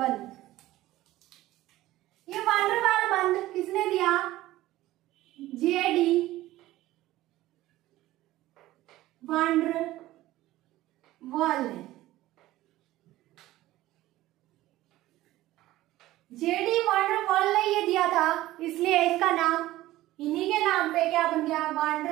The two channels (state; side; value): quieter; left; 16.1 dB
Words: ये वान डेर वाल बंध किसने दिया? जेडी वान डेर वाल ने। जेडी वान डेर वाल ने ये दिया था, इसलिए इसका नाम इन्हीं के नाम पे क्या बन गया? वान